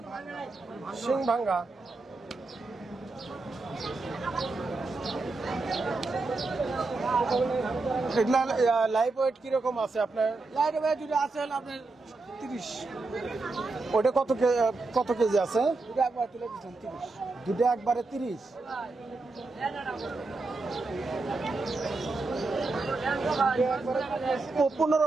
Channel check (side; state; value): left; quieter; 3.5 dB